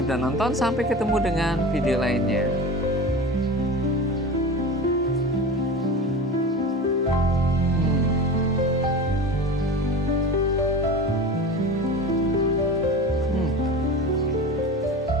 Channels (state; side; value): normal; both; correlation 0.32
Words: sudah nonton, sampai ketemu dengan video lainnya.